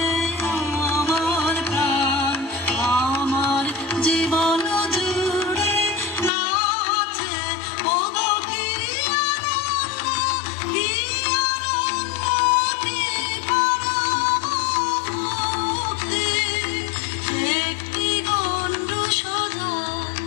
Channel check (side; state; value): right; drops out; at 6.3 s